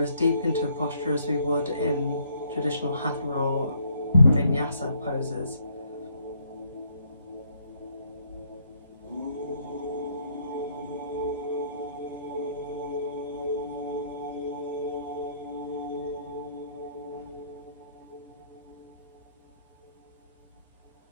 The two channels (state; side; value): inverted; both; correlation -0.69